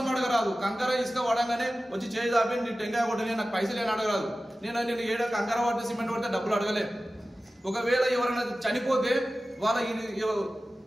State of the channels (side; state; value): both; normal; correlation 0.95